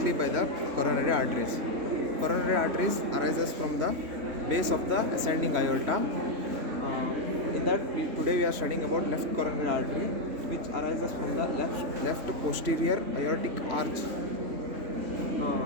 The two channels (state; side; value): late; left; 3.0 ms